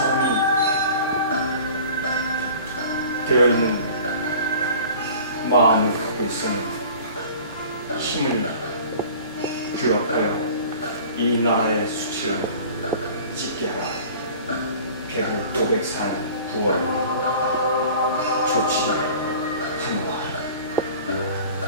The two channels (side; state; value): both; inverted; correlation -0.44